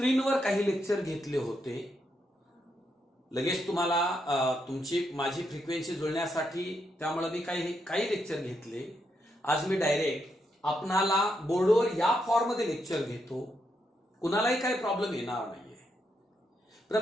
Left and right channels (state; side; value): normal; both; correlation 0.80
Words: काही lecture घेतले होते. लगेच तुम्हाला तुमची माझी फ्रिक्वेन्सी जुळण्यासाठी त्यामुळे मी काही लेक्चर घेतले. आज मी डायरेक्ट आपणाला बोर्डवर या फॉर्म मध्ये लेक्चर घेतो. कुणालाही काही प्रॉब्लेम येणार नाहीये.